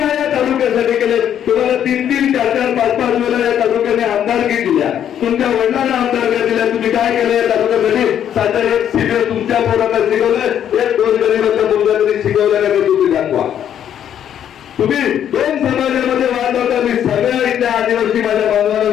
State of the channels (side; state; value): right; quieter; 9.8 dB